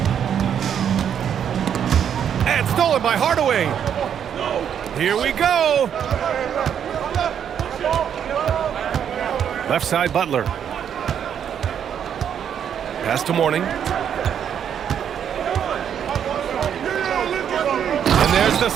And stolen by Hardaway. Here we go. Left side, Butler. Pass to Mourning. And there's the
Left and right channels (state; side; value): quieter; left; 8.7 dB